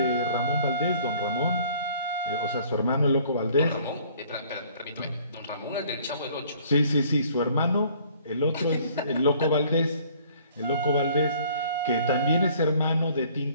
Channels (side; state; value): both; inverted; correlation -0.56